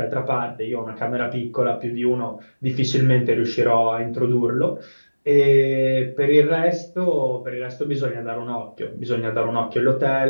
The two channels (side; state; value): both; inverted; correlation -1.00